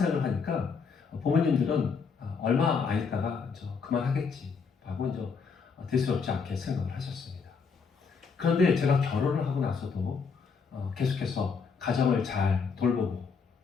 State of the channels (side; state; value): right; quieter; 5.5 dB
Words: 하니까 부모님들은 얼마 안 있다가 그만하겠지 하고 이제 대수롭지 않게 생각을 하셨습니다. 그런데 제가 결혼을 하고 나서도 계속해서 가정을 잘 돌보고